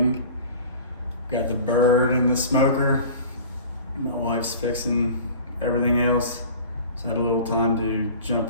Got the bird in the smoker. My wife's fixing everything else, so I had a little time to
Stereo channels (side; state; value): both; inverted; correlation -0.42